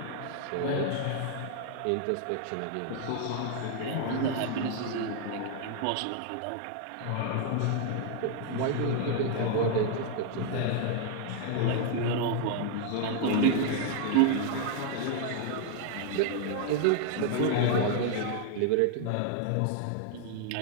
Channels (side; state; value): both; different; correlation 0.00